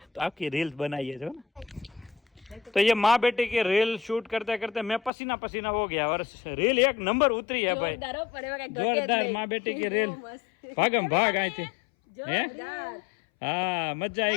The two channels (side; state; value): right; drops out; at 5.1 s